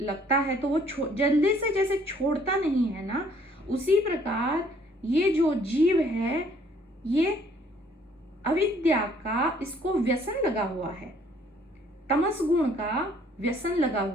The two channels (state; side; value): normal; both; correlation 0.61